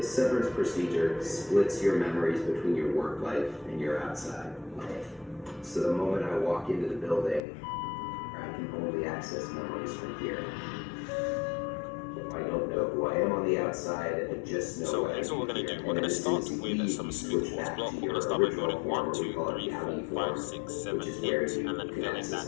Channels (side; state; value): right; drops out; at 7.4 s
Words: severance procedure splits your memories between your work life and your outside life. So the moment I walk into the building, I can only access memories from here. I don't know who I am on the outside, I just know. So here's what we're going to do. We're going to start with some smooth quartz block. We're going to start by building 1, 2, 3, 4, 5, 6, 7, 8, and then filling that